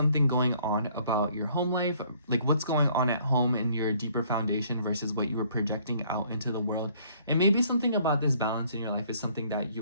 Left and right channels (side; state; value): both; inverted; correlation -0.61